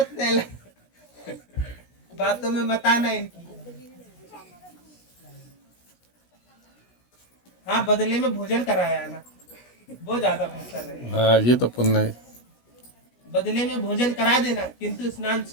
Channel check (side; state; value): right; late; 17 ms